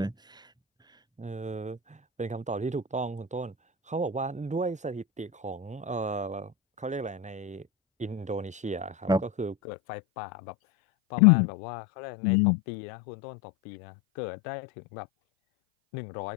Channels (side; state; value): right; drops out; at 9.6 s